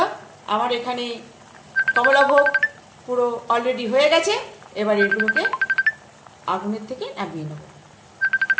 আমার এখানে কমলাভোগ পুরো অলরেডি হয়ে গেছে। এবার এগুলোকে আগুনের থেকে নামিয়ে নেব।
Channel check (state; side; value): identical; both; correlation 1.00